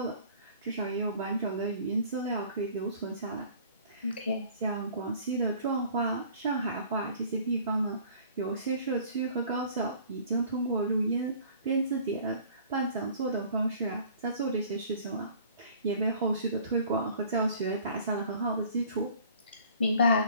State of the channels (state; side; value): inverted; both; correlation -0.51